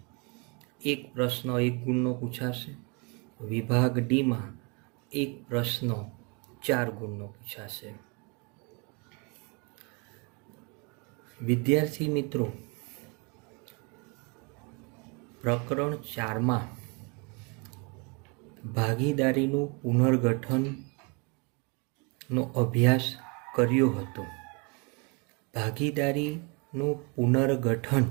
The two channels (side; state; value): left; quieter; 31.7 dB